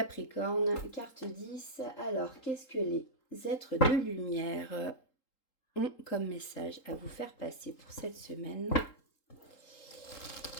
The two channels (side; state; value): right; late; 3.8 ms